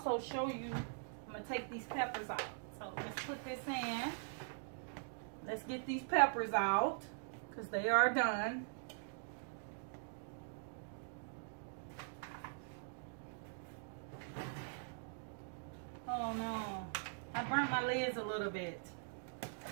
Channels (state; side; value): silent; left; digital silence